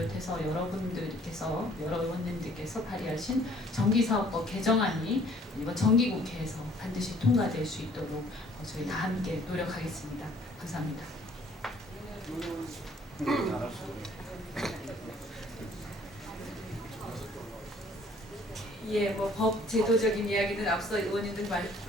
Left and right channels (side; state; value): both; normal; correlation 0.58